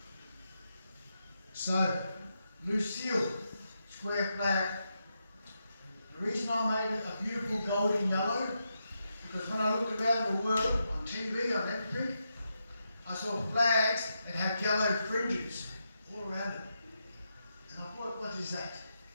So, Lucille, square flag. The reason I made it a beautiful golden yellow, because when I looked around the world, on TV, on everything, I saw flags that had yellow fringes all around it. And I thought, what is that?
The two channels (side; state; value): both; inverted; correlation -0.85